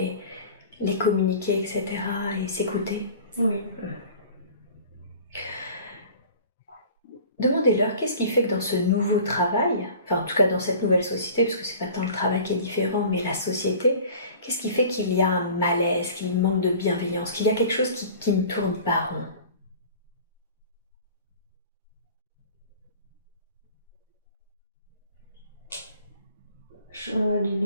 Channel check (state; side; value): inverted; both; correlation -0.44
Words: communiquer, etc. et s'écouter. Oui. demandez-leur qu'est-ce qui fait que dans ce nouveau travail, enfin en tout cas dans cette nouvelle société, parce que c'est pas tant le travail qui est différent, mais la société, qu'est-ce qui fait qu'il y a un malaise, qu'il manque de bienveillance, qu'il y a quelque chose qui ne tourne pas rond? Du